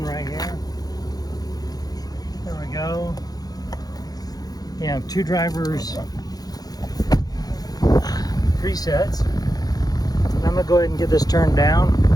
right here. There we go. You have 2 drivers presets. I'm going to go ahead and get this turned down.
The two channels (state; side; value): late; right; 0.19 ms